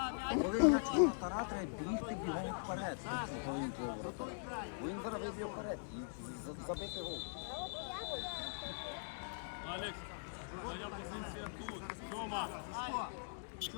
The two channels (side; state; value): right; silent; digital silence